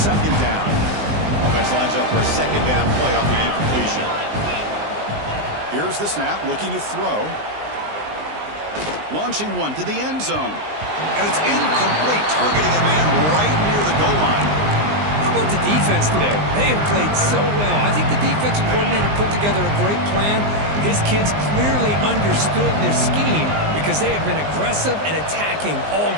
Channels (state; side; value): late; left; 19 ms